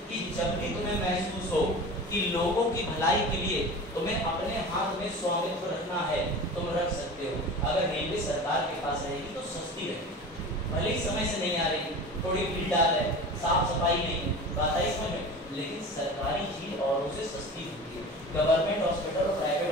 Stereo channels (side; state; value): both; normal; correlation 0.34